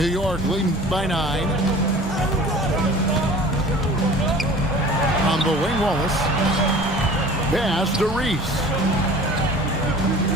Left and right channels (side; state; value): both; normal; correlation 0.44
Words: York leading by 9. On the wing, Wallace. Pass to Reese.